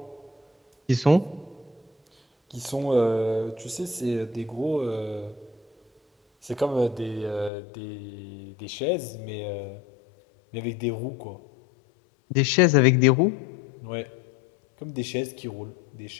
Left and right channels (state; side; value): drops out; right; at 7.5 s